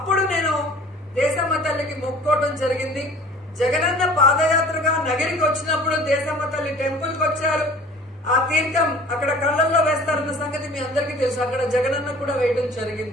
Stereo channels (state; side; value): normal; both; correlation 0.47